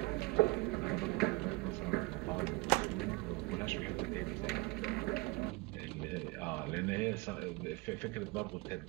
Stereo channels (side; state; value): left; quieter; 24.7 dB